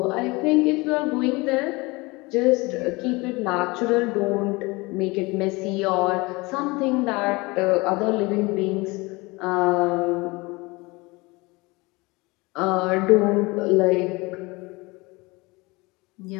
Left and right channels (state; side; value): quieter; right; 24.3 dB